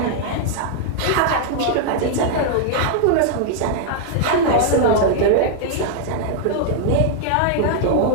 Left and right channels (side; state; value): both; different; correlation -0.01